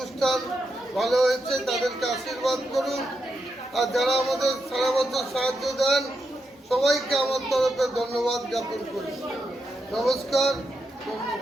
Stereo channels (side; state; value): both; normal; correlation 0.84